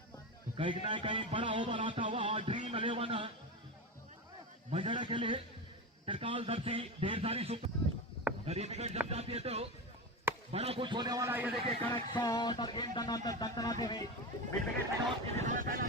तो कहीं ना कहीं बड़ा ओवर आता हुआ ड्रीम 11 मजड़ा के लिए त्रिकाल दर्शी ढेर सारी अगर ये विकेट जम जाती है तो बड़ा कुछ होने वाला है। ये देखिए करेक्ट शॉट और गेंद दंदनाते हुए मिड विकेट में आउट की दिशा में पहला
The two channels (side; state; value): both; normal; correlation 0.21